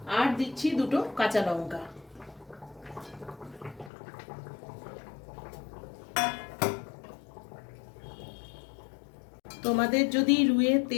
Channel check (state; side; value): drops out; right; at 3.9 s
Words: আর দিচ্ছি দুটো কাঁচা লঙ্কা। তোমাদের যদি রুইয়ের